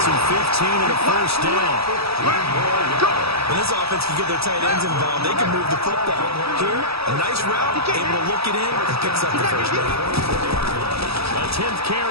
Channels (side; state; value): left; late; 0.77 ms